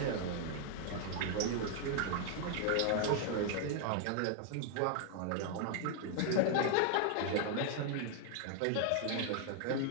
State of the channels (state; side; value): different; both; correlation 0.00